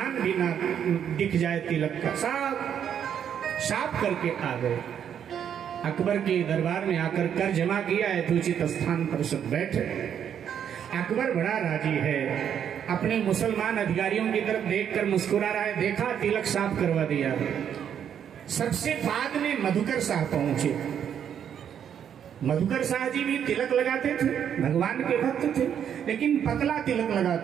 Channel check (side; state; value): left; quieter; 8.8 dB